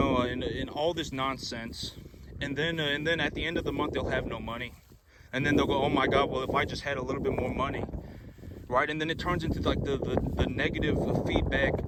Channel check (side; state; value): both; identical; correlation 1.00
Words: and all this nonsense. And then at the end of the month, they'll have no money. And then they'll go, oh, my God, well, if I just had a little bit more money. right? And then it turns into like the negative feedback